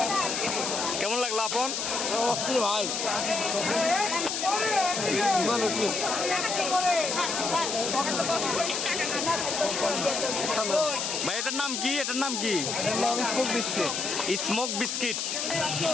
কেমন লাগলো আপন? ভাই ভাই এটার নাম কি? এটার নাম কি? Smoke biscuit.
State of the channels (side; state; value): left; noise; hiss, 2 dB below the sound